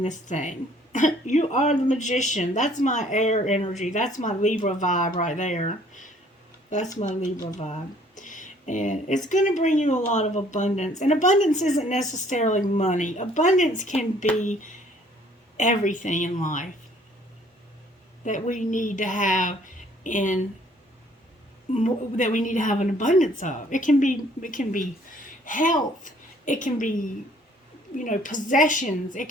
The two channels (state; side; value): normal; both; correlation 0.59